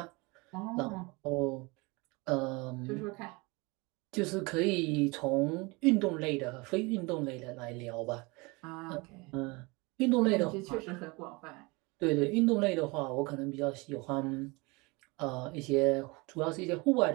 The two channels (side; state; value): left; quieter; 26.1 dB